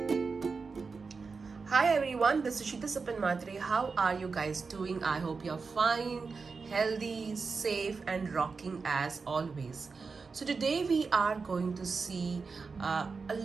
everyone, this is Sheeta Sapan Matre. How are you guys doing? I hope you're fine, healthy, safe, and rocking as always. So, today we are going to see a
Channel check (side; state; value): left; quieter; 4.7 dB